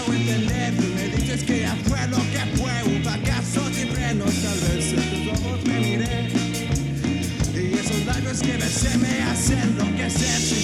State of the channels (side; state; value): both; identical; correlation 1.00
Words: entender. Tú me dices que ya fue lo que fue, un fracaso sin frenos. Tal vez en tus ojos me miré y esos labios que besé me hacen enloquecer.